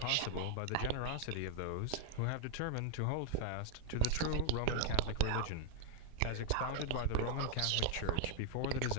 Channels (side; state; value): both; different; correlation 0.00